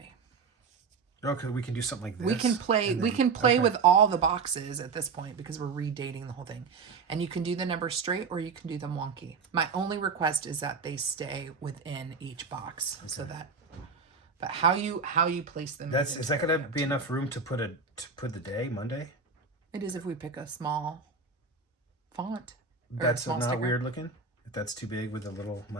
Okay, we can do something like this. We can play with all the boxes at this point because we're redating the whole thing. And you can do the numbers straight or you can do them wonky. My only request is that they stay within each box. Okay. So that but how you place them is that gonna be enough room to put the day, Monday? It is if we pick a small font. That's not sticker. Weird looking? If that's too big with a little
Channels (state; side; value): quieter; left; 5.0 dB